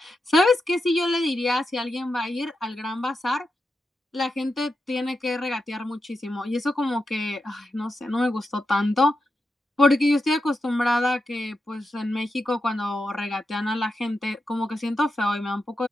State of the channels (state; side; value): normal; both; correlation 0.87